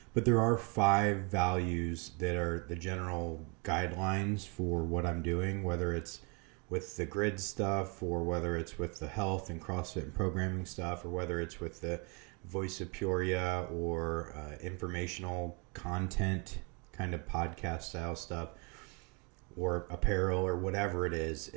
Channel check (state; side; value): quieter; left; 32.3 dB